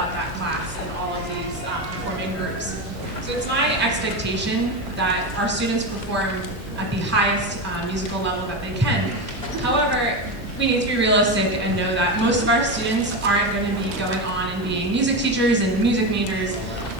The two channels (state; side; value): normal; both; correlation 0.17